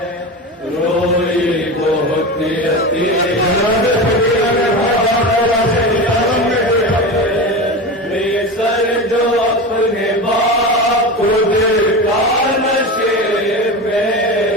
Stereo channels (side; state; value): both; normal; correlation 0.25